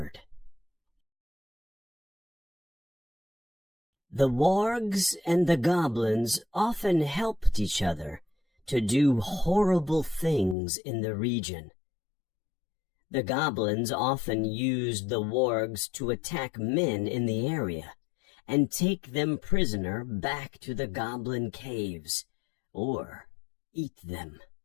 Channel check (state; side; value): drops out; right; at 10.6 s